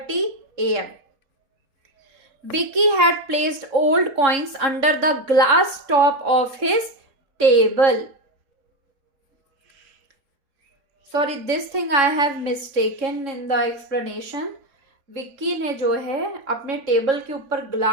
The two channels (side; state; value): left; late; 3.6 ms